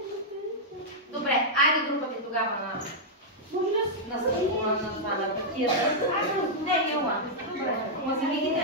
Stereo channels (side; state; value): both; normal; correlation -0.06